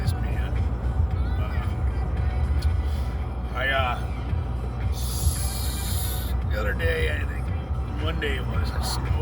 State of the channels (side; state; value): both; identical; correlation 1.00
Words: man. The other day, I think Monday it was, it